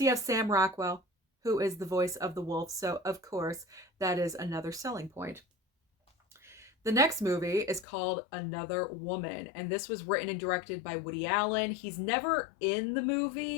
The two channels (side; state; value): right; drops out; at 7.9 s